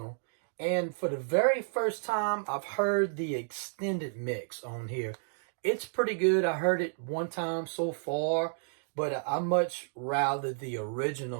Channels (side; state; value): left; silent; digital silence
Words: And for the very first time, I've heard the extended mix on here. It's pretty good. I heard it one time so far, but I much rather the